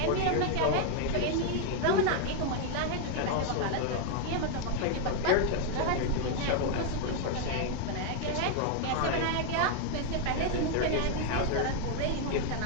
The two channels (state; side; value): different; both; correlation 0.01